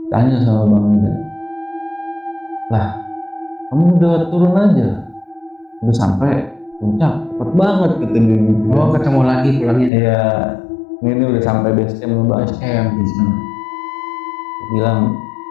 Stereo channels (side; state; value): right; drops out; at 9.9 s